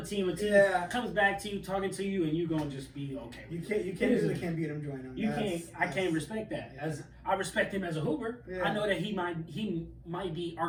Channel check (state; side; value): identical; both; correlation 1.00